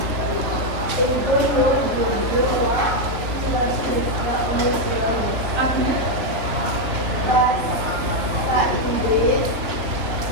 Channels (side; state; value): left; late; 3.0 ms